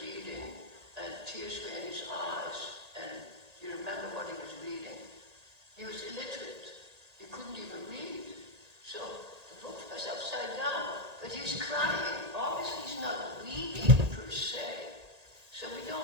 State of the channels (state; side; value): late; left; 1.8 ms